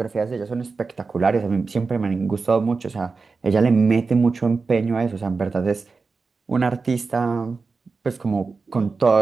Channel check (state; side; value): quieter; left; 4.4 dB